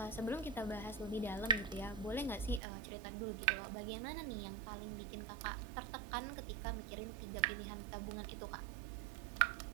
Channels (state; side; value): drops out; left; at 2.6 s